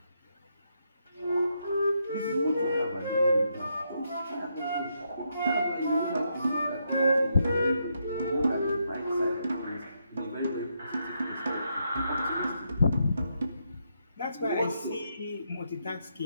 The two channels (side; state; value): both; inverted; correlation -0.79